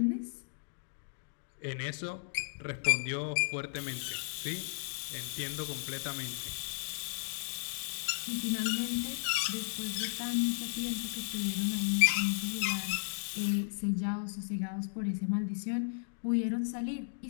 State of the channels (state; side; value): silent; right; digital silence